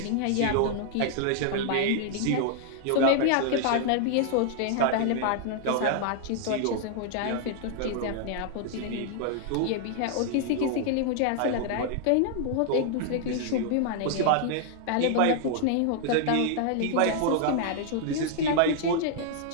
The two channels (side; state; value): both; different; correlation 0.00